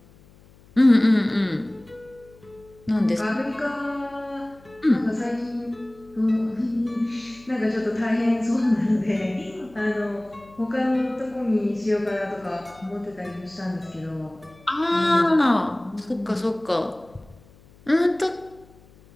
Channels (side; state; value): left; noise; hum, 26 dB below the sound